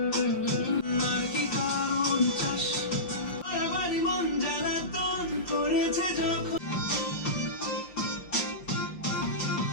আর কি কারণ চাস বাড়ি মন জ্বালাতন করেছে যখন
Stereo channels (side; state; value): right; late; 5.4 ms